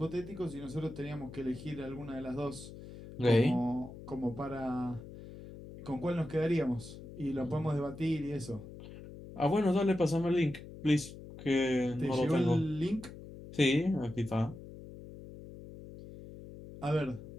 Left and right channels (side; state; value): left; noise; hum, 14 dB below the sound